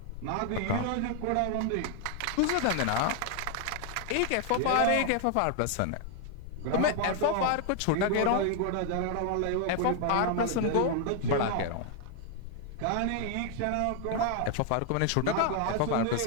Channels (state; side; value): different; both; correlation 0.00